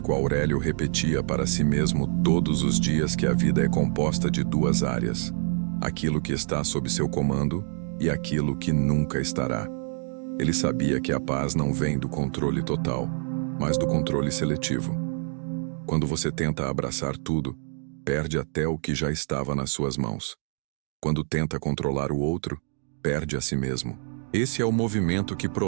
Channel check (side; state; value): left; silent; 61 dB below the other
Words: Aurélio repetia para si mesmo todos os dias que a vida é composta de duas áreas: aquilo que está sob seu comando e aquilo que nunca estará. Ele sabia que a paz não vem do controle total, mas do controle seletivo. Quando você tenta abraçar tudo, perde até o que já estava nas suas mãos. Quando tenta controlar o outro, perde a si mesmo. Esse é o movimento que